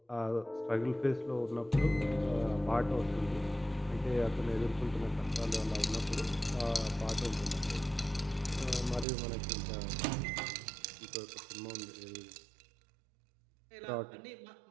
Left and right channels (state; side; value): drops out; left; at 9.1 s